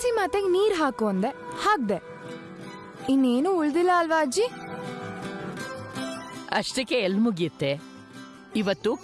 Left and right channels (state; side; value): identical; both; correlation 1.00